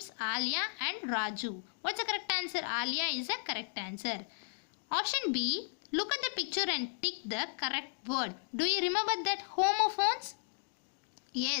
Alia and Raju. What's the correct answer? Alia is the correct answer. Option B, look at the picture and tick the correct word. Do you remember that homophones?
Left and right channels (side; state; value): right; silent; digital silence